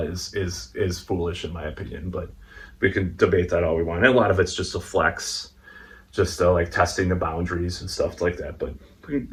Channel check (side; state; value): both; identical; correlation 1.00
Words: is foolish in my opinion. But we can debate that all we want. And a lot of it's just a flex, just like testing the boundaries and stuff like that. But